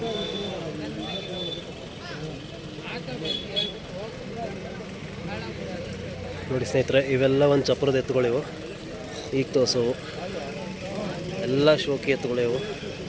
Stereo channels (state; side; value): identical; both; correlation 1.00